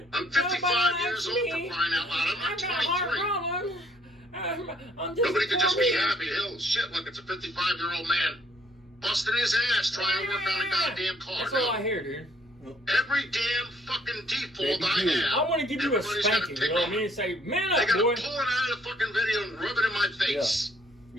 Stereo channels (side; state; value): both; normal; correlation 0.64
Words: I'm 55 years old for crying out loud. I'm not 23. Nobody could just be happy. Hell, shit, look, it's a 55-year-old man busting his ass trying to work on a goddamn car. That's all I hear, dude. Every damn fucking default Baby, I you. have. I want to give you a everybody's gotta spanking, pick you know what I on mean? it. And say, man They up, gotta boy. pull it out of the fucking video and rub it in my face.